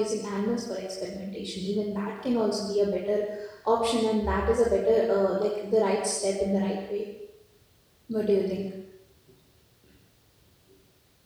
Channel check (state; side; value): identical; both; correlation 1.00